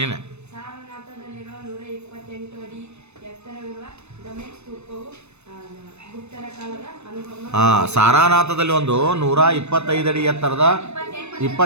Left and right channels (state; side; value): late; left; 0.81 ms